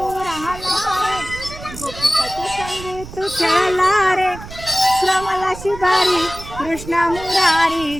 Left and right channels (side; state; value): right; noise; rumble, 13 dB below the sound